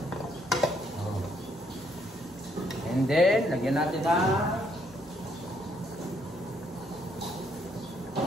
And then, lagyan natin ang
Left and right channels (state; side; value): normal; both; correlation 0.70